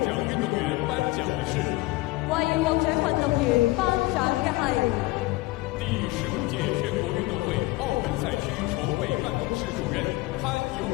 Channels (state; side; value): quieter; right; 20.6 dB